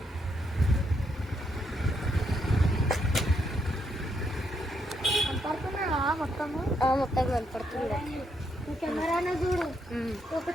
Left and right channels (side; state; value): both; normal; correlation 0.77